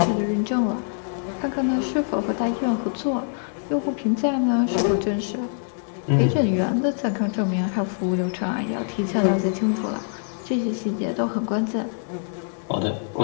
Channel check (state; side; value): silent; right; digital silence